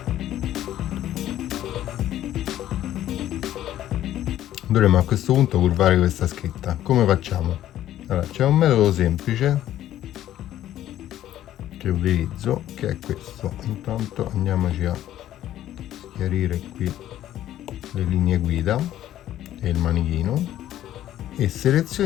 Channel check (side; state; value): right; quieter; 12.6 dB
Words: dovremmo a questo punto curvare questa scritta. Come facciamo? Allora, c'è un metodo semplice che utilizzo, che è questo. Intanto andiamoci a chiarire qui le linee guida e il manichino e